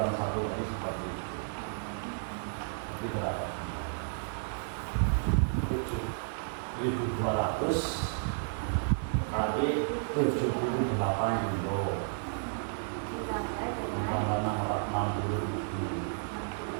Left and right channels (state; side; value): silent; left; 56 dB below the other